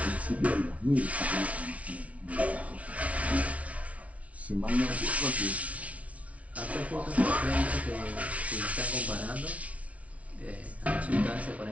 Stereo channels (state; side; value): late; left; 0.066 ms